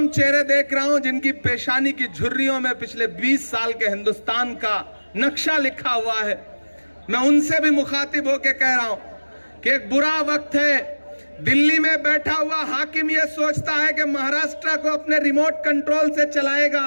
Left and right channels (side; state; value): both; inverted; correlation -1.00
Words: चेहरे देख रहा हूं जिनकी पेशानी की झुर्रियों में पिछले 20 साल के हिंदुस्तान का नक्शा लिखा हुआ है। मैं उनसे भी मुखातिब होकर कह रहा हूं कि एक बुरा वक्त है। दिल्ली में बैठा हुआ हाकिम यह सोचता है कि महाराष्ट्र को अपने रिमोट कंट्रोल से